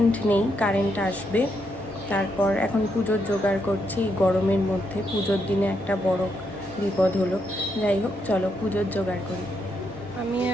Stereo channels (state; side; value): normal; both; correlation 0.79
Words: নেই, কারেন্ট আসবে। তারপর এখন পুজোর জোগাড় করছি। গরমের মধ্যে পুজোর দিনে একটা বড় বিপদ হলো। যাই হোক, চলো পুজোর জোগাড় করি। আমি